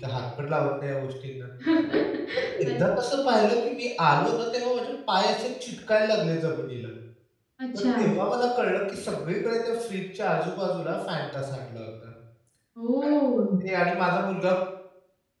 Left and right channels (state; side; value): identical; both; correlation 1.00